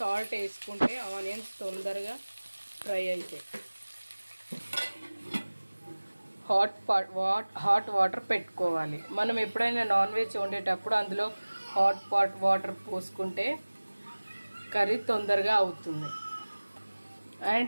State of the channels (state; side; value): inverted; both; correlation -1.00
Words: వేసుకుంటే ఆనియన్స్ తొందరగా ఫ్రై అవుతాయి. హాట్ వాటర్ పెట్టుకోవాలి. మనం ఎప్పుడైనా నాన్ వెజ్ వండేటప్పుడు అందులో హాట్ వాటర్ పోసుకుంటే కర్రీ తొందరగా అవుతుంది